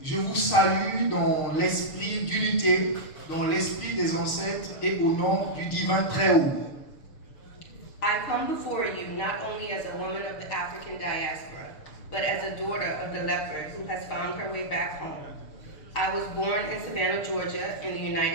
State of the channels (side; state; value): right; late; 6.8 ms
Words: je vous salue dans l'esprit d'unité, dans l'esprit des ancêtres et au nom du divin Très-Haut. I come before you not only as a woman of the African diaspora, but as a daughter of the leopard who has found her way back home. I was born in Savannah, Georgia, in the